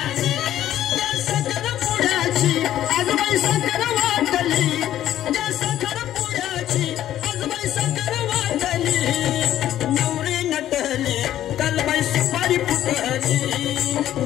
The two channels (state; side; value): quieter; right; 12.2 dB